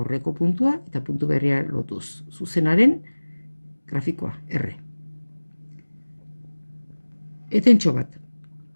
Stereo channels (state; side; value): inverted; both; correlation -1.00